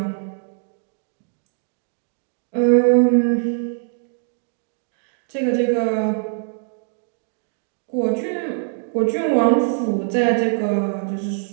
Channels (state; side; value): silent; left; 64 dB below the other